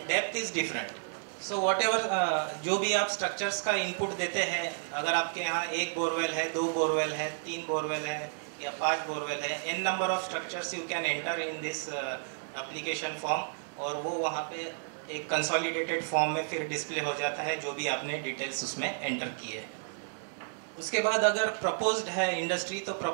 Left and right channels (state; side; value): silent; left; digital silence